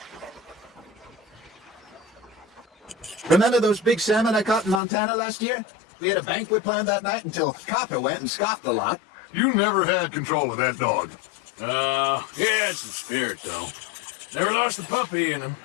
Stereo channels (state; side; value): drops out; right; at 4.8 s